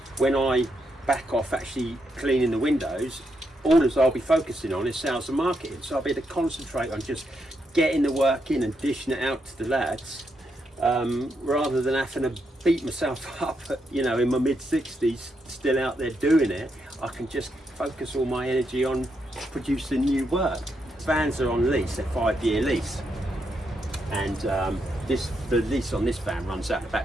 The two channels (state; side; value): normal; both; correlation 0.81